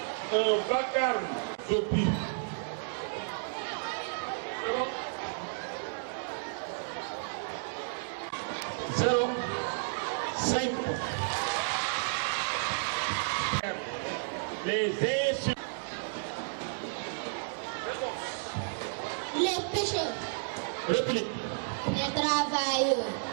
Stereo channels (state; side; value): silent; left; digital silence